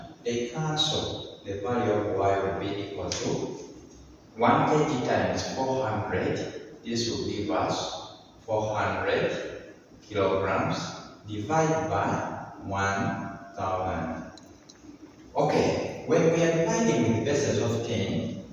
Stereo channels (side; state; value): both; identical; correlation 1.00